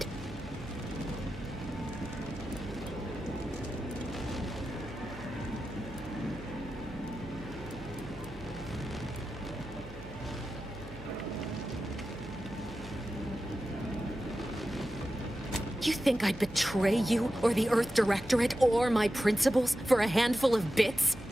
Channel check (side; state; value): right; noise; hum, 15 dB below the sound